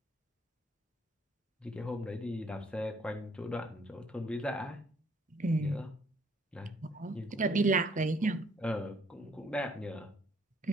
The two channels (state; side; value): normal; both; correlation 0.63